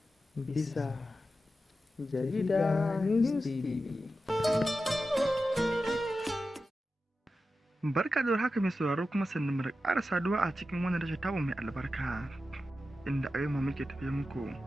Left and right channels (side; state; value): both; normal; correlation 0.92